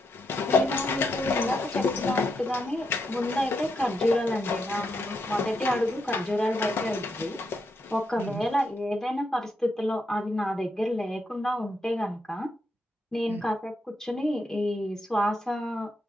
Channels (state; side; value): normal; both; correlation 0.81